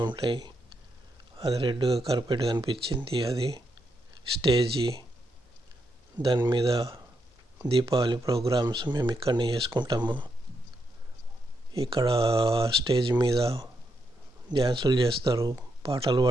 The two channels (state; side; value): normal; both; correlation 0.81